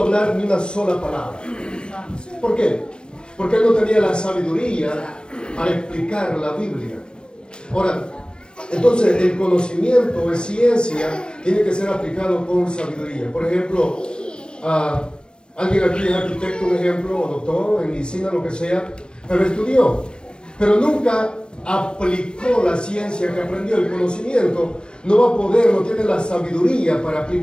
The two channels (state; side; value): late; right; 0.054 ms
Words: hablar ni una sola palabra. ¿Por qué? Porque él no tenía la sabiduría para explicar la Biblia. Ahora, entonces el conocimiento es ciencia, tiene que ser aplicado con sabiduría. Por ejemplo, alguien aquí es arquitecto, un ejemplo, o doctor en medicina, lo que sea, pero estudió, pero nunca aplicó la ciencia que aprendió, el conocimiento, no va a poder, no tiene la sabiduría para